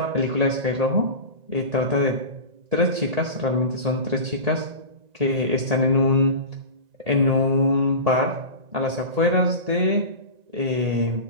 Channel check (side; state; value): left; late; 1.8 ms